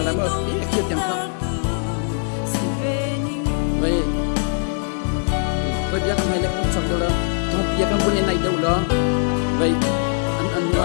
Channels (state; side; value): silent; right; 62 dB below the other